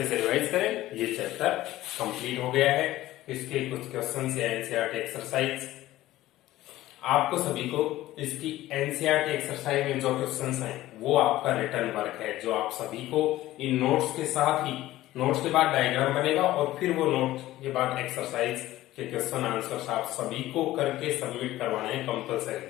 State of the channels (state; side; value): quieter; right; 15.7 dB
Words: से रिवाइज करें। ये चैप्टर कंप्लीट हो गया है। इसके कुछ क्वेश्चन या एनसीईआरटी एक्सरसाइज आपको सभी को, इसकी एनसीईआरटी एक्सरसाइज में जो क्वेश्चंस हैं वो आपका रिटर्न वर्क है, जो आप सभी को इन नोट्स के साथ ही, नोट्स के बाद डायग्राम बनेगा और फिर वो नोट के बाद एक्सरसाइज के क्वेश्चन आंसर्स आप सभी को करके सबमिट करवाने हैं कंपल्सरी।